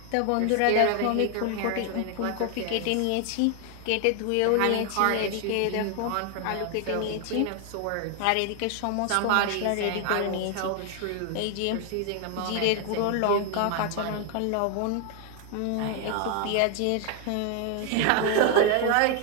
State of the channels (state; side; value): different; both; correlation 0.00